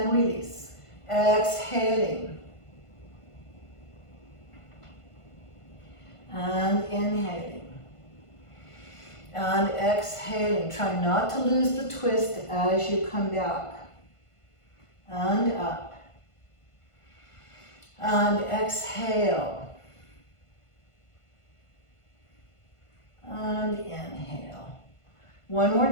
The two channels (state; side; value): late; right; 1.5 ms